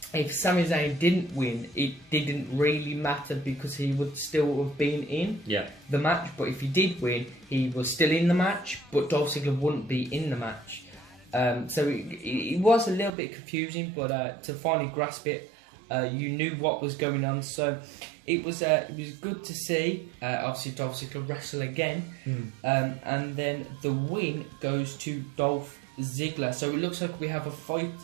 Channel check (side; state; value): left; drops out; at 13.2 s